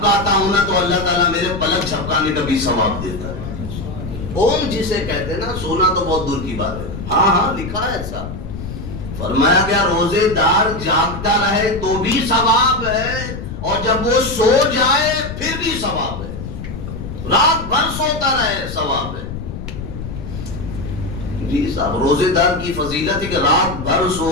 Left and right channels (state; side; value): noise; left; rumble, 8 dB below the sound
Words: ہوں نا تو اللہ تعالیٰ میرے پلک جھپکانے کا بھی ثواب دیتا ہے۔ اوم جسے کہتے ہیں نا، سونا تو بہت دور کی بات ہے، ہاں ہاں لکھا ہے ایسا، فرمایا گیا روزے دار جاگتا رہے تو بھی ثواب ہے، اور جب وہ سو جائے پھر بھی ثواب ہے، رات بھر سوتا رہے ثواب ہے۔ جی صاحب، روزے دار کی فضیلت ہے کہ رات بھر